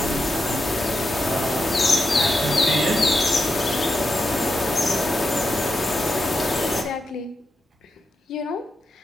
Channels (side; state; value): both; normal; correlation 0.87